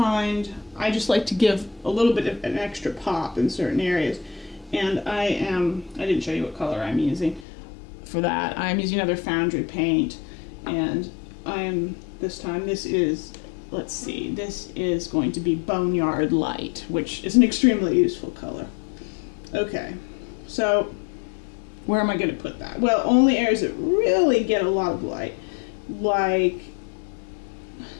I just like to give a little bit of an extra pop in certain areas. And I didn't show you what color I'm using for that. I'm using another foundry paint. And this is, let's see, this is going to be Boneyard Light, which is an extremely useful color. Okay, so where am I going to put that? Well, only areas that really get a lot of light, like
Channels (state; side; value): drops out; right; at 7.5 s